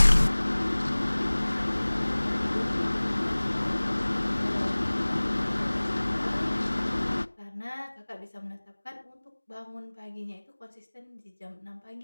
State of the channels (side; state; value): both; inverted; correlation -1.00